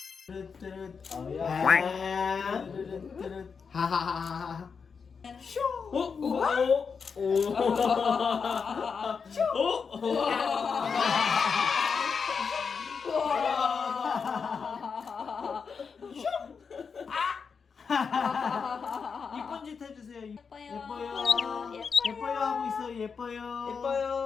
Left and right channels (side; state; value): right; quieter; 5.7 dB